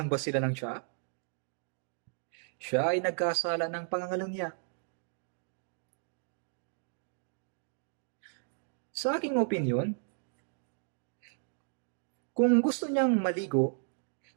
ba sila ng tsaa? Siya ay nagkasala ng pangangalunya. Sa aking opinyon, kung gusto niyang maligo,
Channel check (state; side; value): silent; left; digital silence